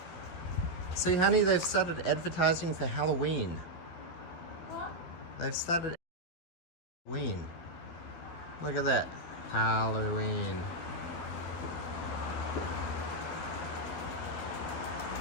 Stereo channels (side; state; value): right; late; 12 ms